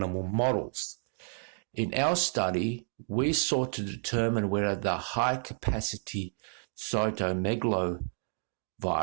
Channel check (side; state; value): left; silent; 56 dB below the other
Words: models. In our study, we sought to determine whether the high-capacity cytomegalovirus